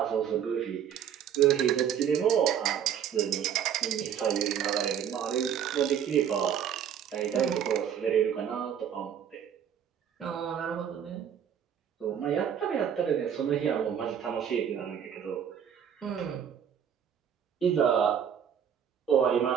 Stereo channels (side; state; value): left; quieter; 8.8 dB